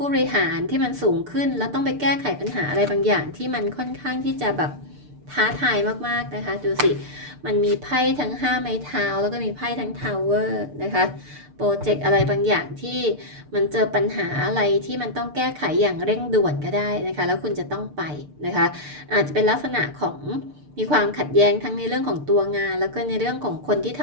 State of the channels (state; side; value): late; left; 6.7 ms